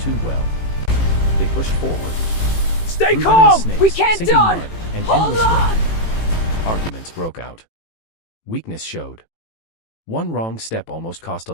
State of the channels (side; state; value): right; late; 18 ms